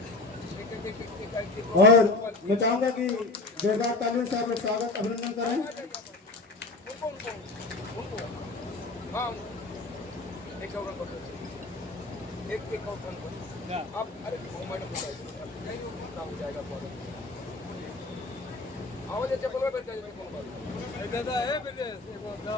और मैं चाहूंगा कि जोरदार तालियों से आप लोग स्वागत अभिनंदन करें।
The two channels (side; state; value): right; quieter; 3.3 dB